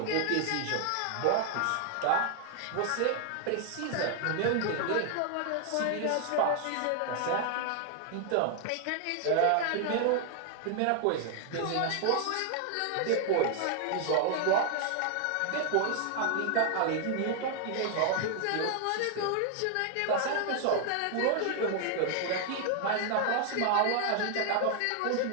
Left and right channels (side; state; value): both; different; correlation 0.00